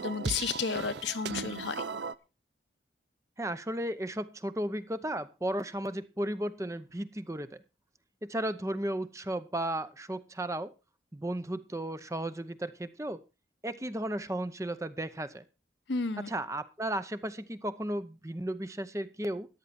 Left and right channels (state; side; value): normal; both; correlation 0.60